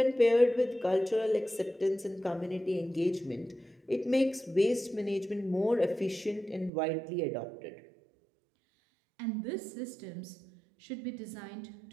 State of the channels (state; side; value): drops out; left; at 6.7 s